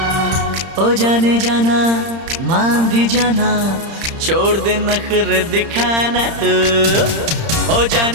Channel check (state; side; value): late; left; 30 ms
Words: ओ जाने जाना मान भी जाना, छोड़ दे नखरे दिखाना तू। ओ